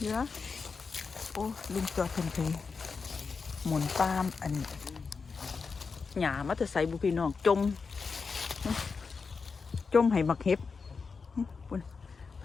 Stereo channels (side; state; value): right; quieter; 5.0 dB